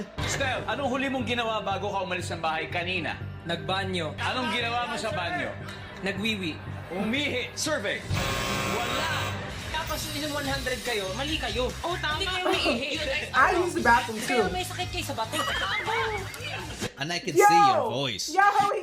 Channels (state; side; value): identical; both; correlation 1.00